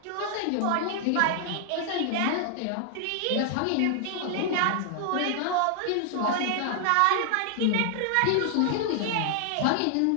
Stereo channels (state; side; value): different; both; correlation 0.00